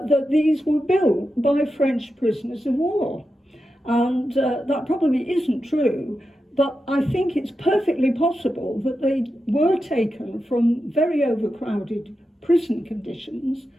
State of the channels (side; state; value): both; normal; correlation 0.89